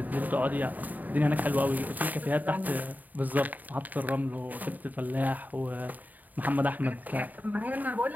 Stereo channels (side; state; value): left; late; 0.082 ms